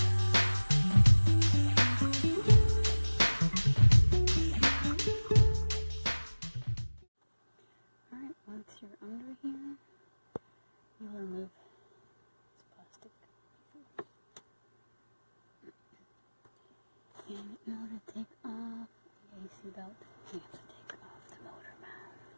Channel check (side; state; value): both; inverted; correlation -1.00